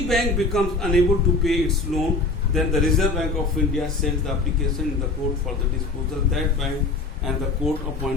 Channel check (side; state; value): right; quieter; 3.5 dB